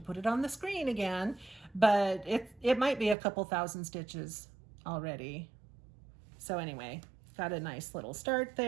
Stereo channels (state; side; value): drops out; left; at 3.2 s